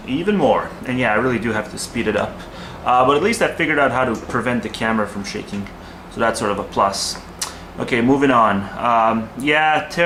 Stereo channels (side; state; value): both; identical; correlation 1.00